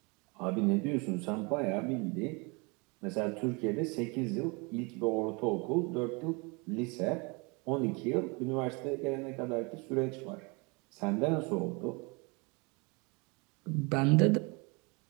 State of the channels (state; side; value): quieter; left; 29.6 dB